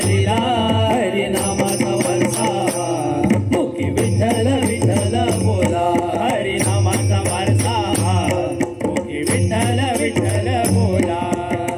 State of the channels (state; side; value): identical; both; correlation 1.00